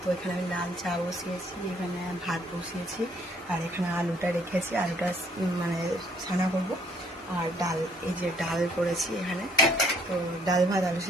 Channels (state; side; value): normal; both; correlation 0.65